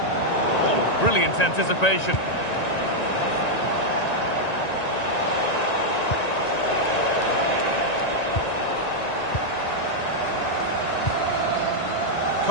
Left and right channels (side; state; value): right; late; 1.9 ms